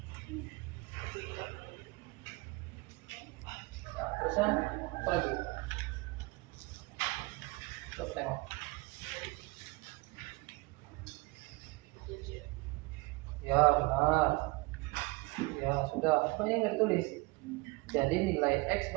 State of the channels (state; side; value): quieter; left; 24.8 dB